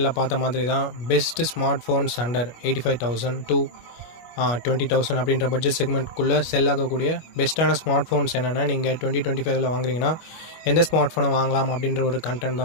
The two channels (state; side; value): late; right; 25 ms